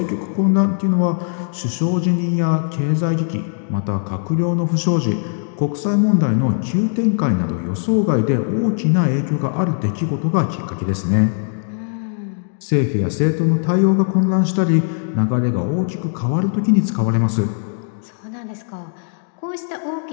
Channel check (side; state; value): right; silent; digital silence